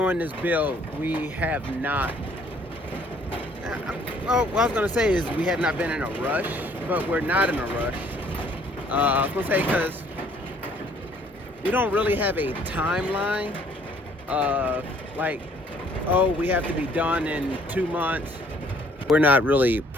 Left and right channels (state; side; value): normal; both; correlation 0.61